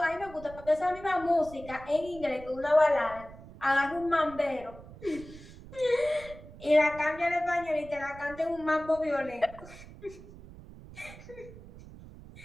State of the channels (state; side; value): noise; right; rumble, 17 dB below the sound